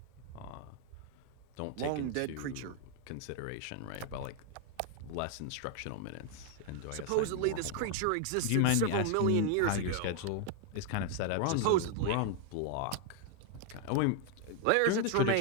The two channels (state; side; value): different; both; correlation 0.00